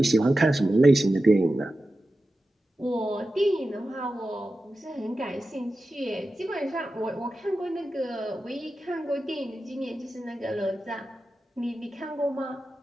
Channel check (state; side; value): normal; both; correlation 0.93